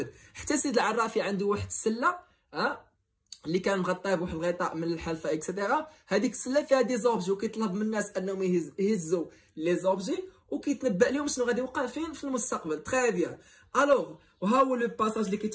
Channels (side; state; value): both; identical; correlation 1.00